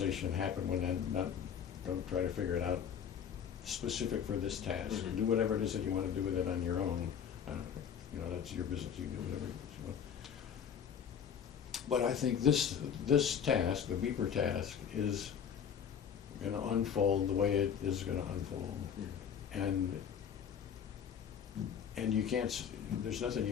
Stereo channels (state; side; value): quieter; right; 7.9 dB